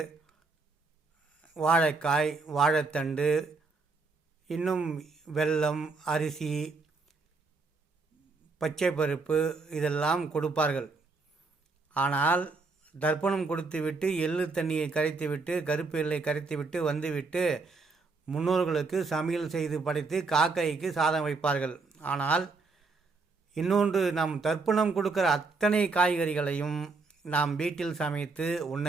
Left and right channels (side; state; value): left; quieter; 4.0 dB